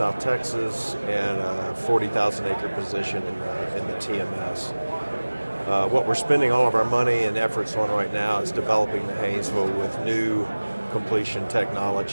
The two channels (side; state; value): both; inverted; correlation -1.00